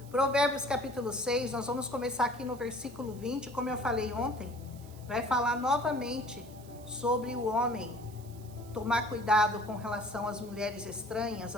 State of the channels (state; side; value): noise; right; hiss, 22 dB below the sound